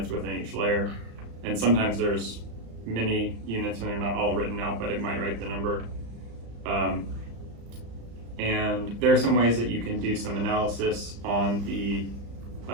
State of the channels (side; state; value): left; late; 35 ms